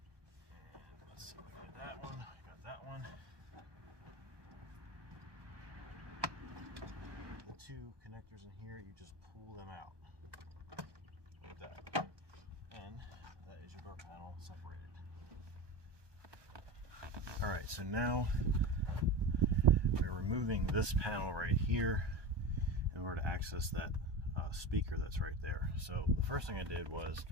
And let's see if I got that one. I got that one. The 2 connectors in here, you just pull them out like that, and that is your door panel separated. All right, so now we're removing this panel right here in order to access that speaker that's right there. So the first thing I did was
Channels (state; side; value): late; left; 1.2 ms